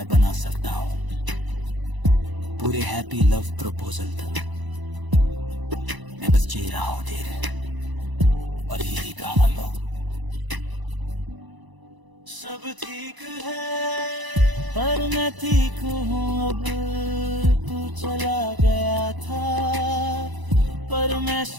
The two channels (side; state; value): left; late; 1.0 ms